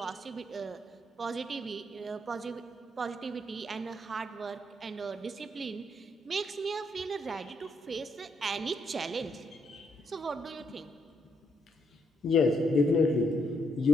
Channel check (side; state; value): both; normal; correlation 0.75